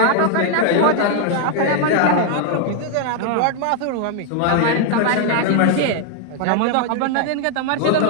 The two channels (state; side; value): different; both; correlation 0.00